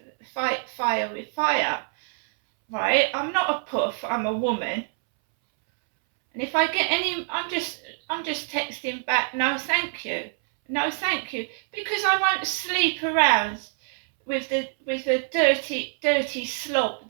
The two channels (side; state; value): left; silent; 62 dB below the other